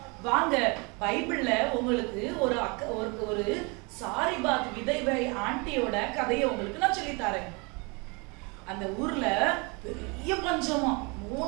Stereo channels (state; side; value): quieter; left; 30.0 dB